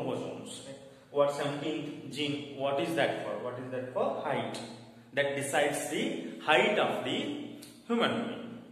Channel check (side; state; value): both; identical; correlation 1.00